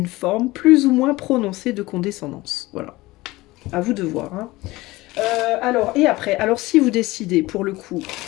forme plus ou moins prononcée de condescendance. Voilà. À vous de voir. Hein. Alors, et après, alors si vous décidez, pour le coup,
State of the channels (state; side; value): quieter; right; 19.9 dB